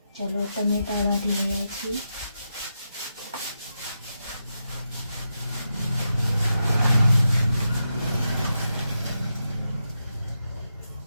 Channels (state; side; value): inverted; both; correlation -0.86